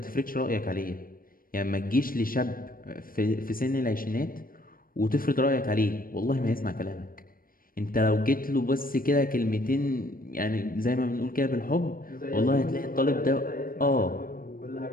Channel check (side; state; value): right; late; 0.41 ms